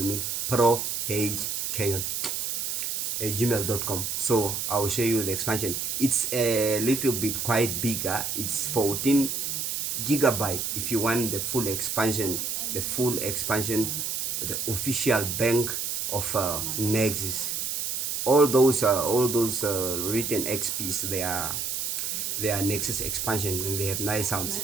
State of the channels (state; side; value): noise; right; hiss, 2 dB below the sound